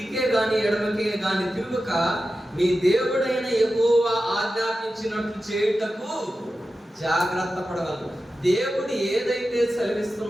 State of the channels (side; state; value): both; normal; correlation 0.93